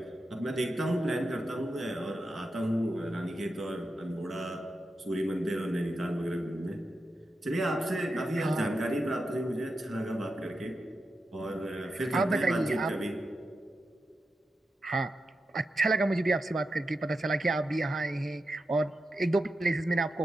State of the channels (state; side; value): normal; both; correlation 0.89